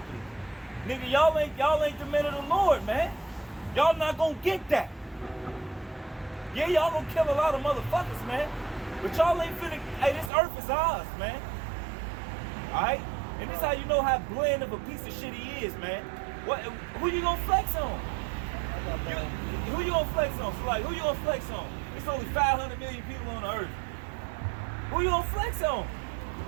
Nigga, y'all ain't the men of the Lord, man. Y'all not gonna get that. Yeah, y'all gonna kill a lot of motherfuckers, man. But y'all ain't finna, hey, this earth is ours, man. Alright? And this how you know how bland of a piece of shit he is, man. Who you gonna flex on? Who you gonna flex on? So like, who you gonna flex on? It's only 500 million people on the earth. Who you gonna flex on?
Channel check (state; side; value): drops out; left; at 10.3 s